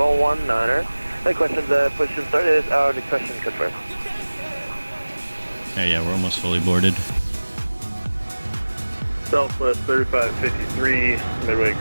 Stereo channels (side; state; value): both; inverted; correlation -1.00